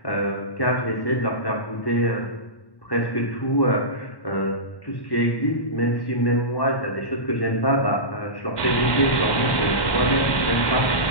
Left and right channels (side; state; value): right; late; 1.1 ms